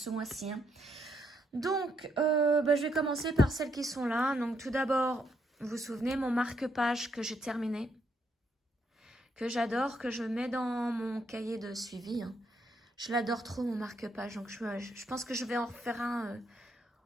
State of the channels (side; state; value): both; normal; correlation 0.75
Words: mois-ci. Donc je vais commencer par celles qui sont là. Donc tout d'abord, vous vous souvenez mon marque-page que j'ai terminé. Que j'adore, que je mets dans mon cahier de suivi. Je l'adore trop mon marque-page, donc je pense que je vais en refaire un